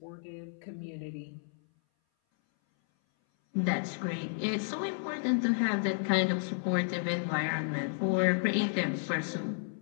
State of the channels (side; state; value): right; silent; 56 dB below the other